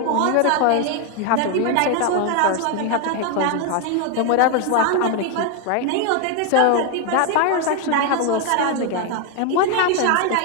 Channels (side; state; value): both; different; correlation 0.01